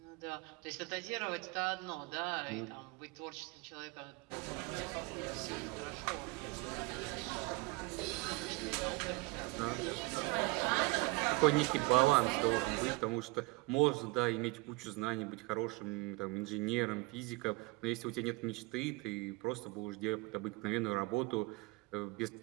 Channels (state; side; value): quieter; left; 24.2 dB